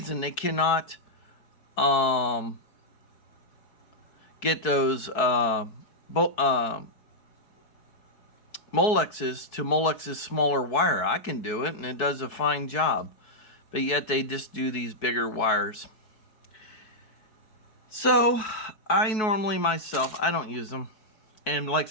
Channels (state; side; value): late; right; 4.6 ms